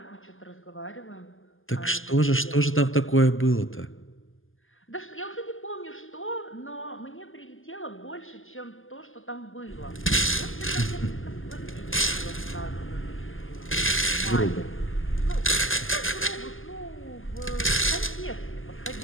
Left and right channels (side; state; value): right; late; 0.59 ms